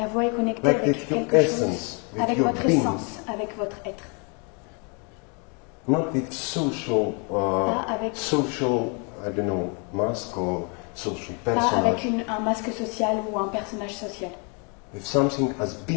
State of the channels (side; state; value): right; quieter; 35.1 dB